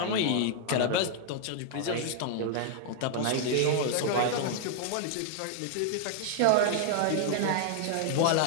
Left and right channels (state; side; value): different; both; correlation 0.00